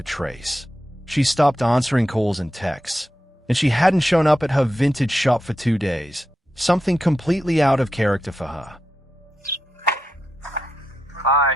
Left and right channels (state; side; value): normal; both; correlation 0.88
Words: trace. She stopped answering calls and texts, and she hadn't shown up at her vintage shop for 2 days, something completely out of character for her. Hi,